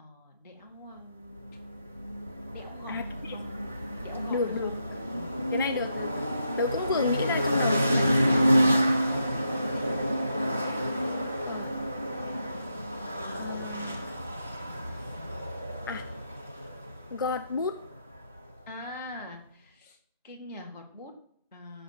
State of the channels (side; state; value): both; inverted; correlation -0.82